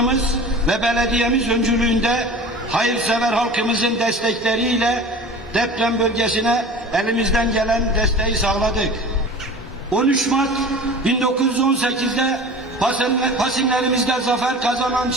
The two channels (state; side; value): normal; both; correlation 0.38